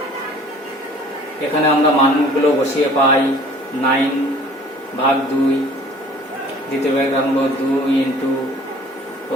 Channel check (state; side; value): normal; both; correlation 0.50